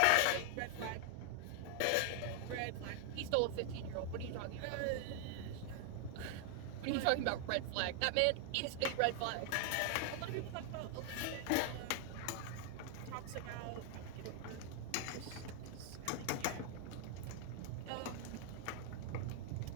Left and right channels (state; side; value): different; both; correlation 0.00